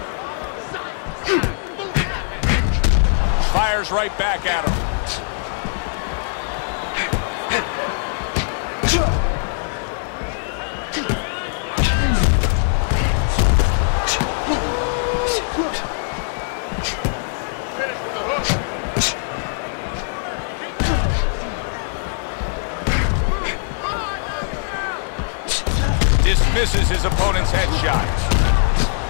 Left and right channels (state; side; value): silent; right; digital silence